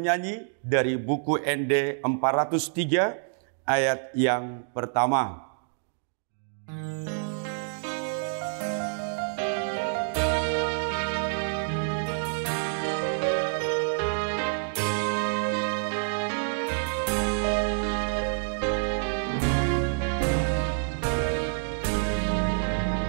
dari buku ND 403 ayat yang pertama.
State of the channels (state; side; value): silent; left; digital silence